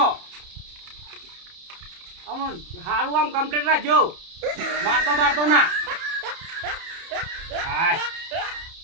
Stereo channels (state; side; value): late; left; 30 ms